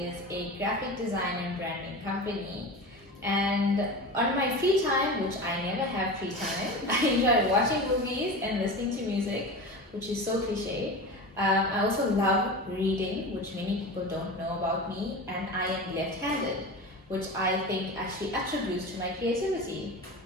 a graphic design and branding company. And on my free time, which I never have free time, I enjoy watching movies and listening to music, which is so cliche. I also love reading, which many people don't know about me, and I am left-handed, which I think actually attributes to my creativity.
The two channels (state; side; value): normal; both; correlation 0.29